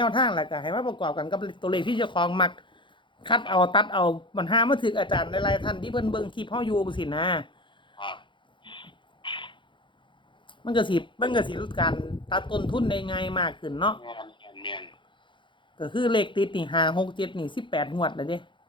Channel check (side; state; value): right; late; 0.23 ms